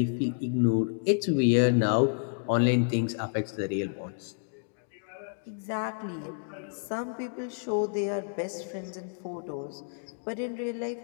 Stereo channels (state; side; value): silent; right; digital silence